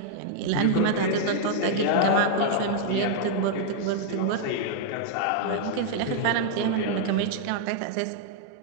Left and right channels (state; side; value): different; both; correlation -0.01